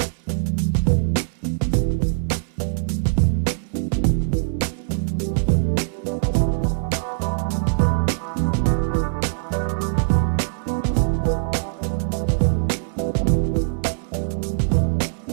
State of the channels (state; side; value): silent; left; 62 dB below the other